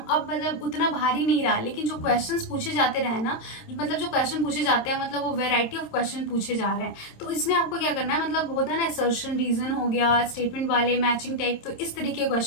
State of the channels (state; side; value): late; right; 27 ms